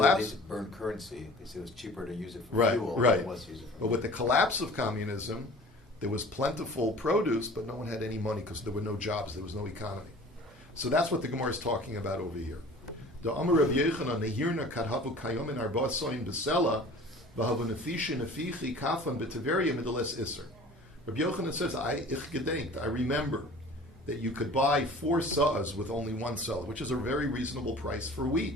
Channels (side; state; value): both; normal; correlation 0.44